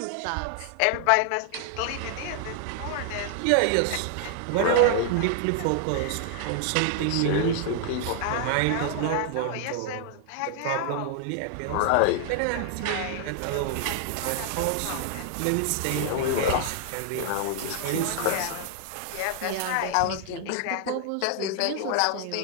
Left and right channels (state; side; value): different; both; correlation 0.00